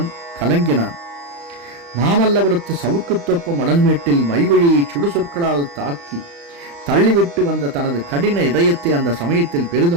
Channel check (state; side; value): late; left; 35 ms